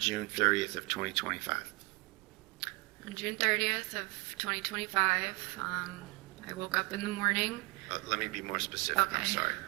30th of 2025? On June 30th of 2025, I woke up in the morning. Let me be more specific. Okay. I'm sorry.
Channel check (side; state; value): left; quieter; 25.9 dB